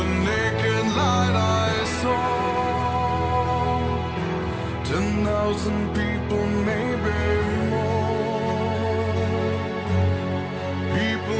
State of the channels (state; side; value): identical; both; correlation 1.00